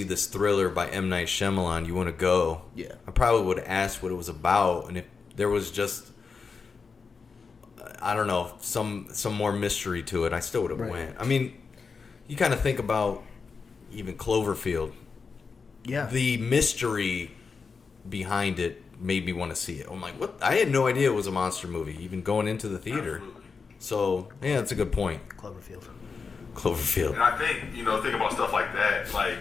this thriller by M. Night Shyamalan. You want to go? Yeah. I probably would have asked what it was about. And if there was just, I don't know, some more mystery to it, I still would have went. I mean, you kind of think about even Cloverfield. Yeah. The mystery behind it made me want to see it. I'm like, what? I had no idea it was a monster movie, even going into the theater. Absolutely. So, yeah, that's a good point. Cloverfield. And I think, think about stuff like that, like,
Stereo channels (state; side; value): quieter; right; 5.1 dB